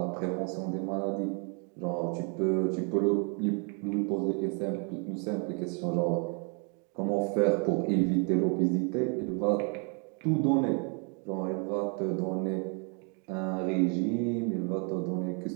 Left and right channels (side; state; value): left; quieter; 38.6 dB